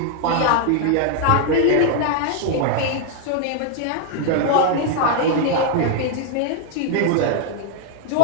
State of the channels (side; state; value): both; different; correlation 0.00